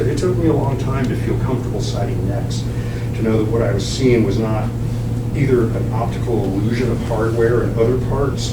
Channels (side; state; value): both; identical; correlation 1.00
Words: it took me a long time to feel comfortable sighting necks, to know that what I was seeing was not either an optical illusion of hardware and other